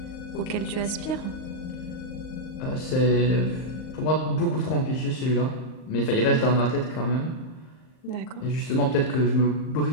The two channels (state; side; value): late; right; 38 ms